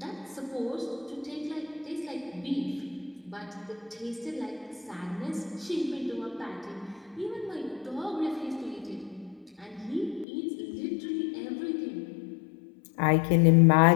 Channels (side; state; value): right; drops out; at 10.2 s